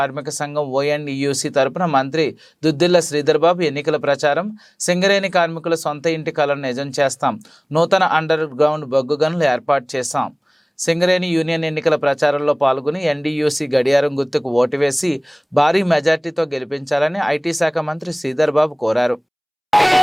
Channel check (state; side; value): identical; both; correlation 1.00